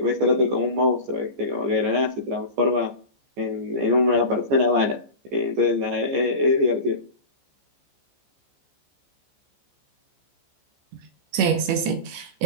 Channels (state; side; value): late; left; 14 ms